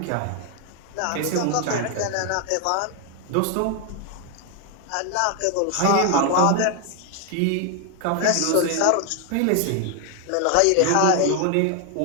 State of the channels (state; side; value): different; both; correlation 0.01